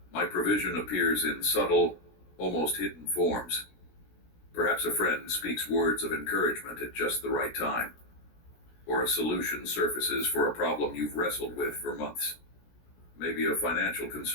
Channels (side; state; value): right; late; 17 ms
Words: my provision appears in subtle, almost hidden forms. Perhaps a friend speaks words of encouragement at just the right time, or a solution surfaces for a problem you've wrestled with for months. Maybe a financial